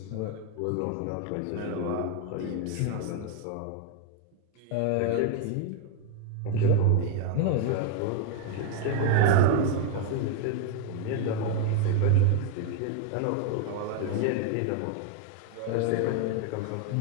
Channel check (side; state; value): both; different; correlation 0.00